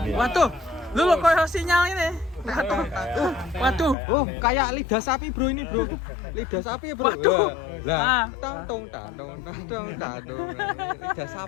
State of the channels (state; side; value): drops out; right; at 4.0 s